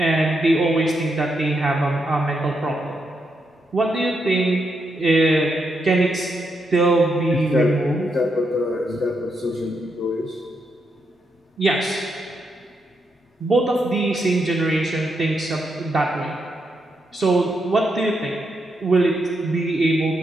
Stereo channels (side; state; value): both; normal; correlation 0.81